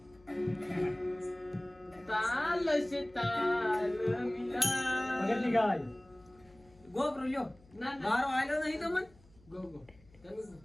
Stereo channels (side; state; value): left; noise; hum, 27 dB below the sound